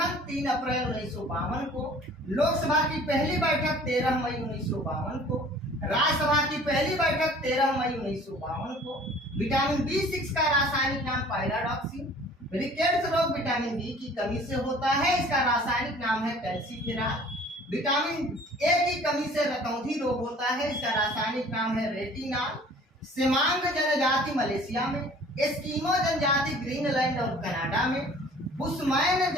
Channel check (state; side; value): normal; both; correlation 0.50